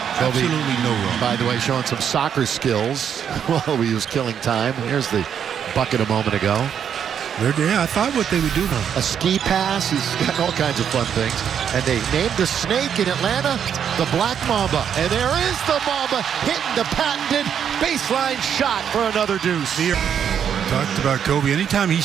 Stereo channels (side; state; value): left; quieter; 8.3 dB